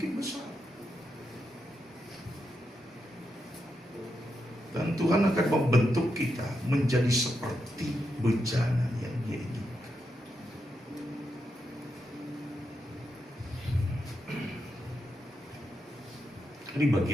besar. Dan Tuhan akan membentuk kita menjadi seperti bejana yang Dia inginkan. Ini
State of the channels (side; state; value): both; normal; correlation 0.84